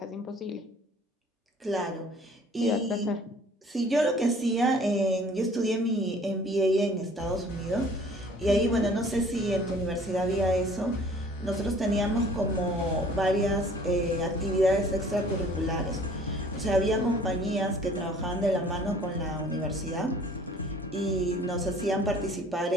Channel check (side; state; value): both; normal; correlation 0.53